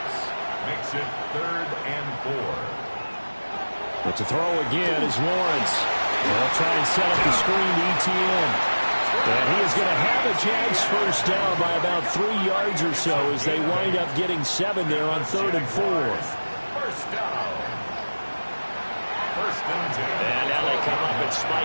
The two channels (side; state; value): both; inverted; correlation -1.00